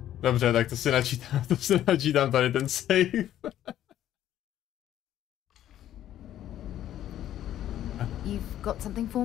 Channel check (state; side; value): quieter; right; 11.9 dB